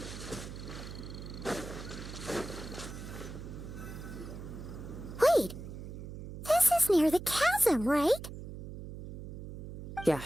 Wait, this is near the chasm, right?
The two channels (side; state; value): right; noise; hum, 10 dB below the sound